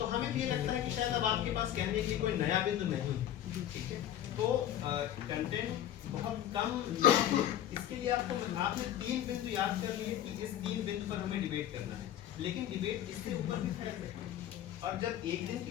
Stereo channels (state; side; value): quieter; right; 11.5 dB